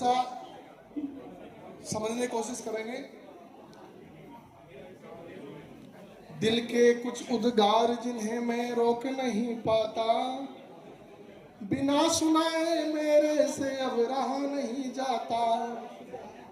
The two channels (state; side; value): identical; both; correlation 1.00